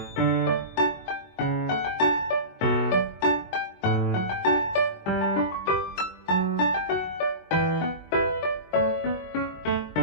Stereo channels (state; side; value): late; right; 22 ms